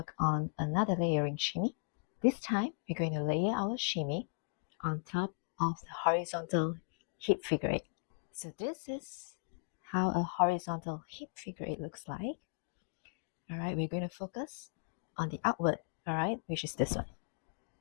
on another layering shimmy. This time we're going to layer our shimmy on top of the horizontal hip figure 8. So this is how a horizontal hip figure 8 looks like. Alright, we're going to focus on the outward, alright, which is this one.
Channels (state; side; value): silent; right; digital silence